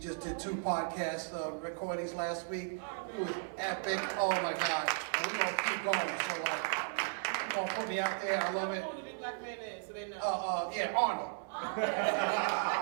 just did 2 podcasts recorded parties last week. It was epic. Oh my God. And we're gonna keep going. So like, come on, put me out there. I love it. Who the big black man is, so they know. Yeah, Arnold.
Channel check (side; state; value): left; silent; digital silence